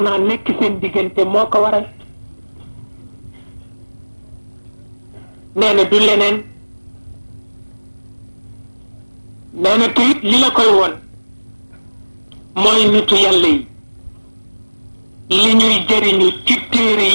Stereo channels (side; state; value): both; inverted; correlation -1.00